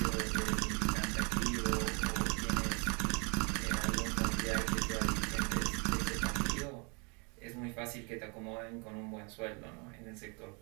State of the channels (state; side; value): quieter; left; 32.9 dB